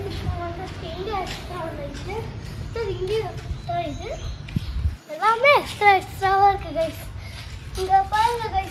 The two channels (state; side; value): identical; both; correlation 1.00